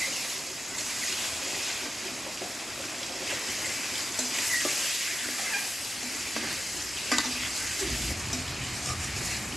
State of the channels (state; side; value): normal; both; correlation 0.92